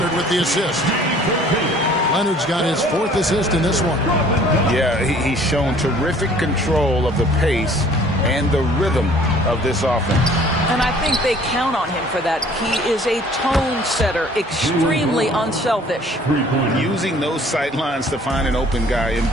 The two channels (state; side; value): normal; both; correlation 0.54